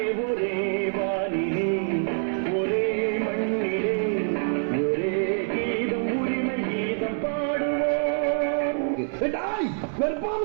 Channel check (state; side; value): silent; left; digital silence